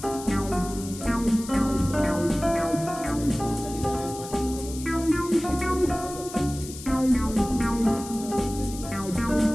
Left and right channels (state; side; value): noise; left; hiss, 13 dB below the sound